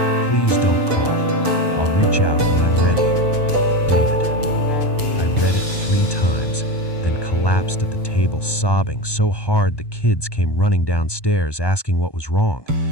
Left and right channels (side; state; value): right; late; 1.2 ms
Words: Please don't call. I'll reach out when I'm ready. David. I read it 3 times, then collapsed at the table sobbing so hard the kids came running downstairs asking what was wrong.